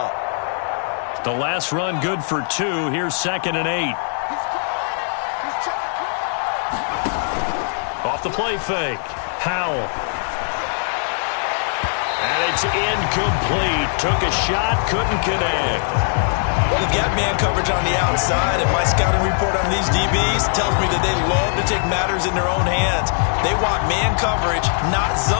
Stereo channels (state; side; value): silent; right; 65 dB below the other